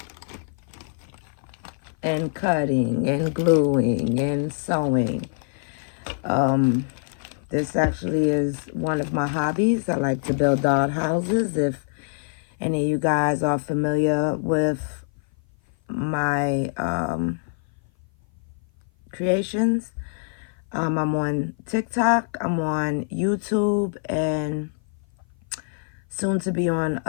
and cutting and gluing and sewing. This actually is one of my hobbies. I like to build doll houses. If any of you guys are familiar with my creations, I'm on TikTok, I'm on YouTube, and soon to be on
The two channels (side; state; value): right; silent; 56 dB below the other